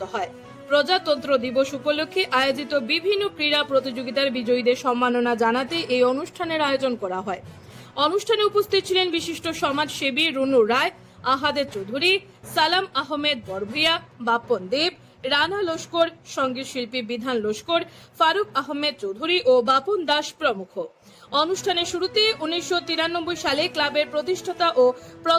হয়। প্রজাতন্ত্র দিবস উপলক্ষে আয়োজিত বিভিন্ন ক্রীড়া প্রতিযোগিতার বিজয়ীদের সম্মাননা জানাতে এই অনুষ্ঠানের আয়োজন করা হয়। অনুষ্ঠানে উপস্থিত ছিলেন বিশিষ্ট সমাজসেবী রুনু রায়, আহাদের চৌধুরী, সালাম আহমেদ বরভুইয়া, বাপন দেব, রানা লস্কর, সঙ্গীত শিল্পী বিধান লস্কর, ফারুক আহমেদ চৌধুরী ও বাপন দাস প্রমুখ। অনুষ্ঠানের শুরুতে 1993 সালে ক্লাবের প্রতিষ্ঠাতা ও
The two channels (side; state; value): both; identical; correlation 1.00